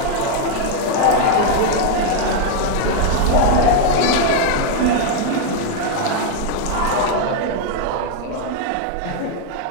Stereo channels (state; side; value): different; both; correlation 0.00